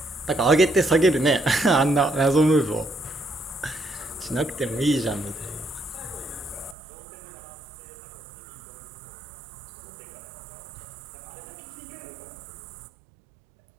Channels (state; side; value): drops out; left; at 6.8 s